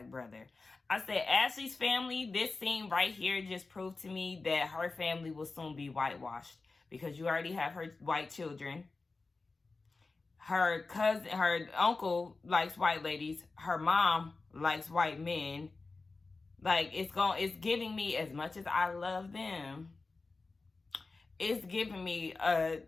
brother. I said, Ashley's family, this scene right here just proved to me that her family will soon be whitewashed. Because you already have her white children. Her cousin, her uncle likes white ladies. Her mom likes white men. Like, it's giving me, as much as I love them, it's giving me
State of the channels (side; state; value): right; quieter; 3.8 dB